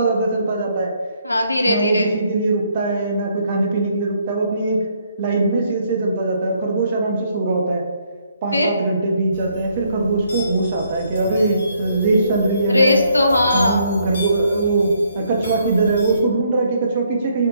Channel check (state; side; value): inverted; both; correlation -0.70